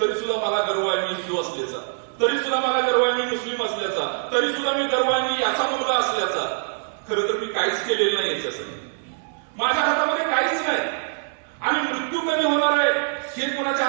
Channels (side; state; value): left; silent; digital silence